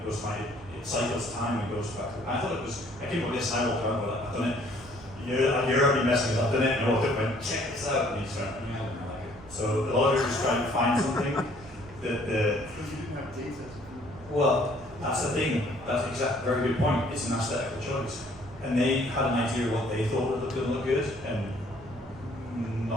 goes like, it cycles time and goes back. And I thought it was, I came up with this and I walked around, but I've done it. You're already messing up, I've done it, and I walked up and went, check this out, and he just went, yeah, I don't like it. So a lot of it was trying to find something that the... Because you didn't have data. Well, that's the thing, that's exactly, very good point, it's an aesthetical choice. And they had an idea of what they thought would look good, and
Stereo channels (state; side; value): noise; right; rumble, 19 dB below the sound